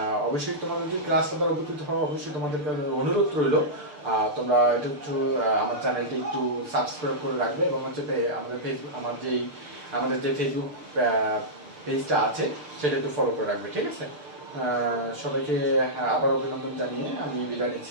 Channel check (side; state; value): left; late; 6.7 ms